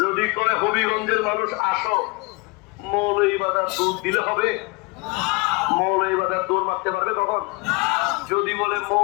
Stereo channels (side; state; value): right; quieter; 26.2 dB